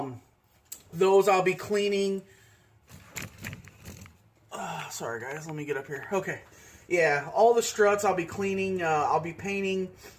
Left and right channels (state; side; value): identical; both; correlation 1.00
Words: Those I'll be cleaning. Sorry, guys. Let me get up here. Okay. Yeah, all the struts I'll be cleaning. I'll be painting